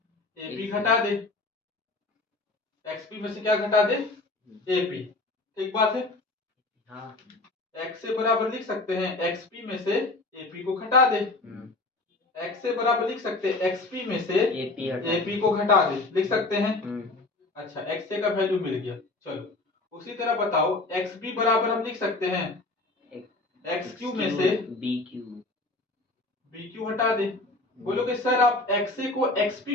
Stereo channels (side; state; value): right; quieter; 3.1 dB